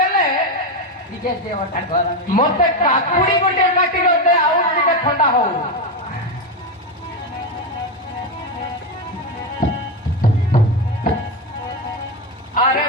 ଟିକେ ଦେହଟା ଗରମ ମତେ କାକୁଡି ଗୋଟେ କାଟି ଦେ ଆଉ ଟିକେ ଥଣ୍ଡା ହଉ আরে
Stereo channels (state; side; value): normal; both; correlation 0.11